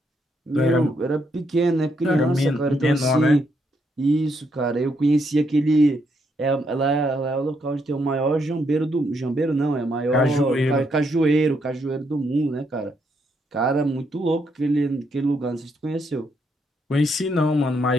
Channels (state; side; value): normal; both; correlation 0.76